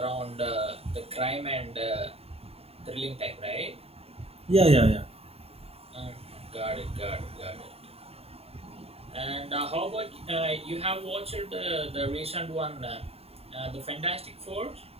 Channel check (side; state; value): left; late; 0.29 ms